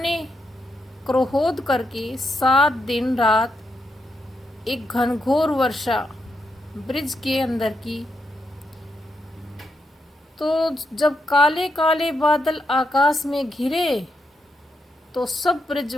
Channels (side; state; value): both; normal; correlation 0.82